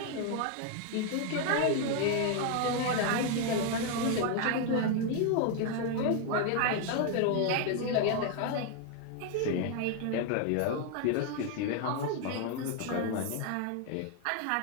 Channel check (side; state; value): both; different; correlation 0.01